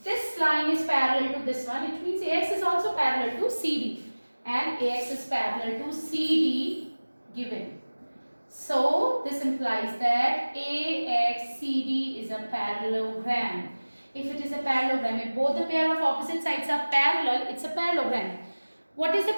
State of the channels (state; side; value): inverted; both; correlation -1.00